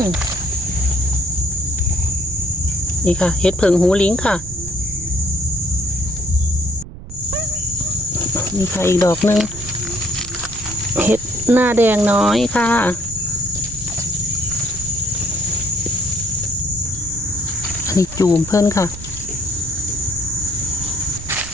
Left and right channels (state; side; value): noise; right; rumble, 14 dB below the sound